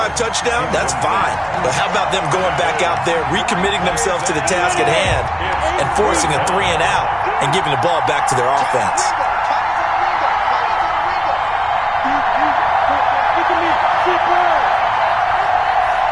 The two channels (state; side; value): identical; both; correlation 1.00